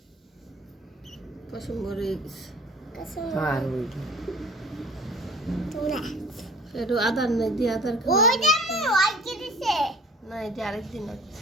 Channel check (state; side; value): normal; both; correlation 0.47